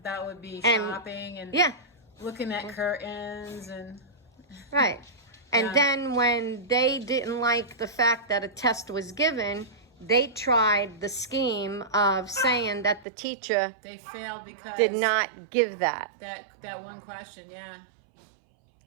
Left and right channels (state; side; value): drops out; left; at 13.1 s